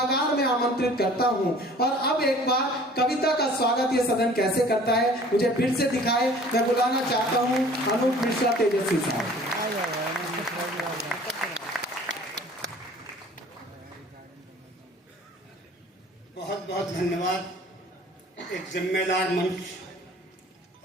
में आमंत्रित करता हूं, और अब एक बार कविता का स्वागत ये सदन कैसे करता है मुझे फिर से दिखाए। मैं बुलाना चाहता हूं अनूप मिश्रा तेजस्वी साहब। बहुत बहुत धन्यवाद। एक जिम्मेदार मंच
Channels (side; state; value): both; normal; correlation 0.50